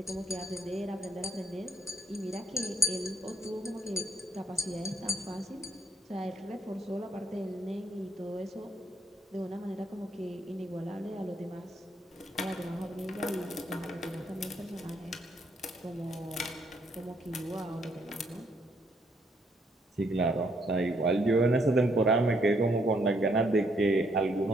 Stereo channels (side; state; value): both; normal; correlation 0.71